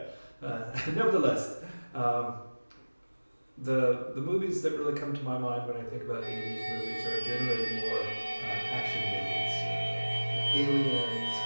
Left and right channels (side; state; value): both; inverted; correlation -1.00